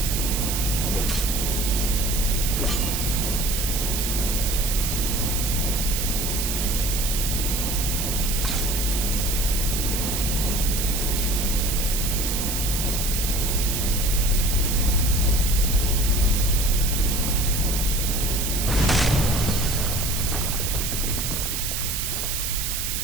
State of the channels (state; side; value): noise; right; hiss, 2 dB below the sound